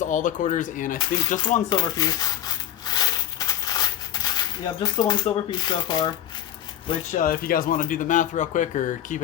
the quarters, and I think just one silver piece. Yeah, just the one silver piece so far. Which, if you guys want to do the math real quick or keep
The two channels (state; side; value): quieter; right; 11.5 dB